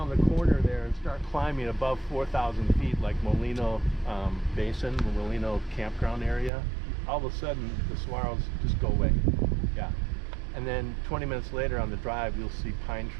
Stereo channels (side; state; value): left; drops out; at 6.5 s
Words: the corner there and start climbing above 4,000 feet, like Molino Basin, the Molino campground area. All of a sudden, the saguaros just go away. Yeah. And then 20 minutes later on the drive, you'll see pine